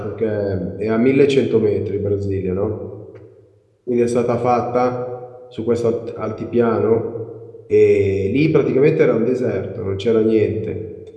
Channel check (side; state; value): both; identical; correlation 1.00